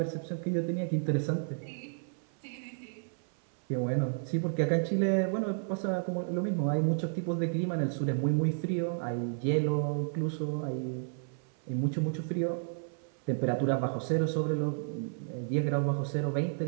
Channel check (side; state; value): left; silent; 56 dB below the other